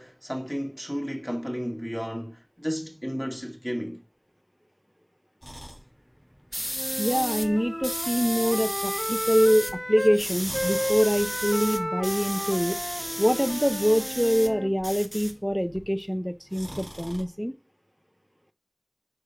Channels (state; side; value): identical; both; correlation 1.00